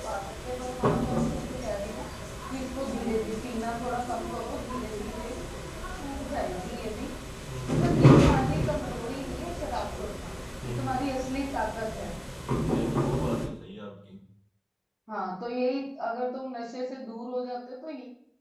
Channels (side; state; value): both; identical; correlation 1.00